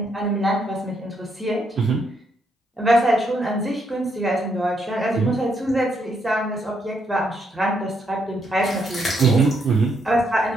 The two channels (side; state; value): both; normal; correlation 0.76